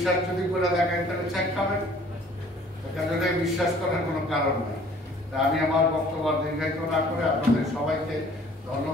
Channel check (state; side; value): normal; both; correlation 0.54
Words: যদি করে দেখেন তাহলে ছ্যাক খাবেন। এখানে বিশ্বাস করার কোনো কারণ নেই। তা আমি আমার বক্তব্য দীর্ঘায়িত না করে আপনাদের সবাইকে